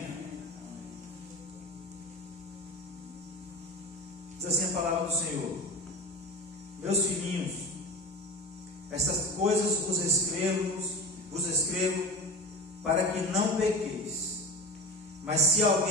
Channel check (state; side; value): normal; both; correlation 0.31